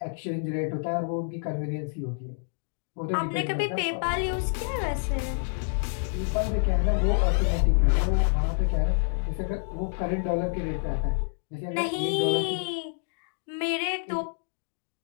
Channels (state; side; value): silent; right; digital silence